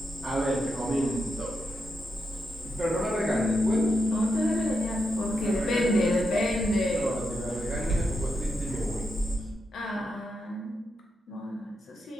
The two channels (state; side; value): normal; both; correlation 0.86